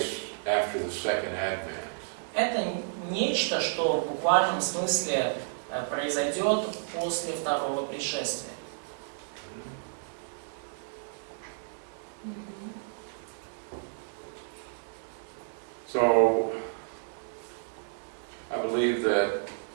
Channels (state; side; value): silent; left; digital silence